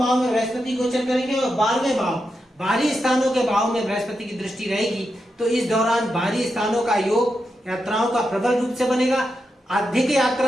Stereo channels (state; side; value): normal; both; correlation 0.87